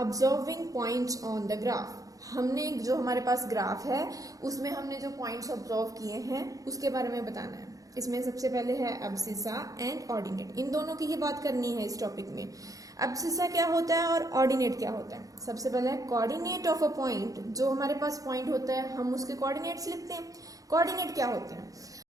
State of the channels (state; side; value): late; left; 0.17 ms